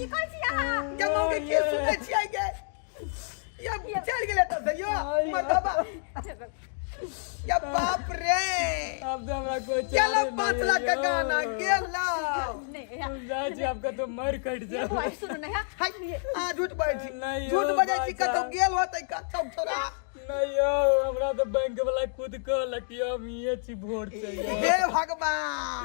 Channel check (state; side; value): silent; right; digital silence